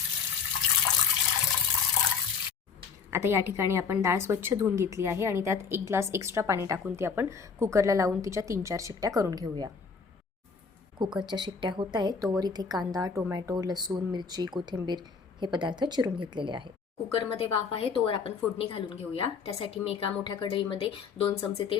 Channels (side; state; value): right; quieter; 5.7 dB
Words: आता या ठिकाणी आपण डाळ स्वच्छ धुवून घेतली आहे आणि त्यात 1 ग्लास एक्स्ट्रा पाणी टाकून ती आपण कुकरला लावून तिच्या 3-4 शिट्ट्या करून घेऊया। कुकरच्या शिट्ट्या होत आहेत तोवर इथे कांदा, टोमॅटो, लसूण, मिरची, कोथिंबीर हे पदार्थ चिरून घेतलेले आहेत। कुकरमध्ये वाफ आहे तोवर आपण फोडणी घालून घेऊया। त्यासाठी मी एका मोठ्या कढईमध्ये 2 चमचे